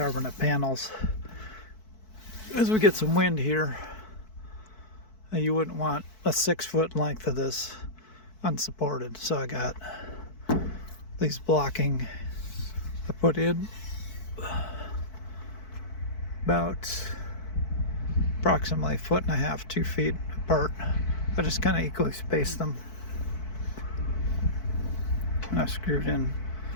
panels. As we get some wind here, you wouldn't want a 6-foot length of this unsupported. So I got these blocking I put in about approximately 1.5 feet, 2 feet apart. I just kind of equally spaced them. And I screwed in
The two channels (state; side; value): late; right; 4.6 ms